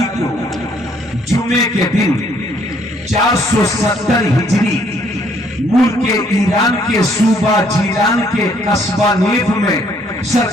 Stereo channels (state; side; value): normal; both; correlation 0.65